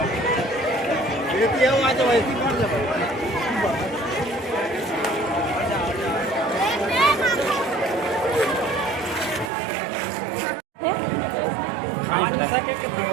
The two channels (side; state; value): left; drops out; at 9.5 s